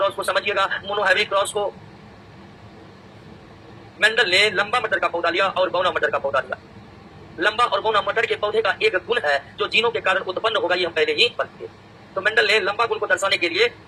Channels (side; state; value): both; identical; correlation 1.00